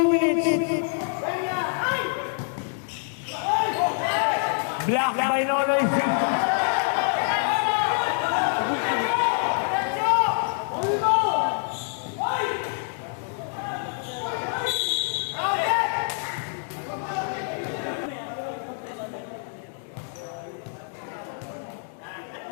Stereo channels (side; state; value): right; silent; 57 dB below the other